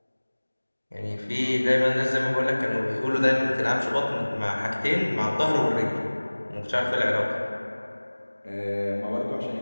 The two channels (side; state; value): both; inverted; correlation -1.00